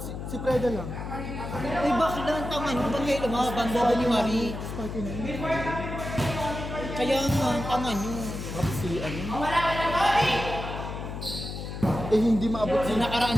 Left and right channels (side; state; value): left; noise; hum, 7 dB below the sound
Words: si Preda lang. Uy, bakit naman tama nyo? Ba't kayo lumaban? Bobo ni Marie. Spike na yun. Kaya nga, tama nyo. Tapos si ano. Eh, hindi maabot Nung nakaraan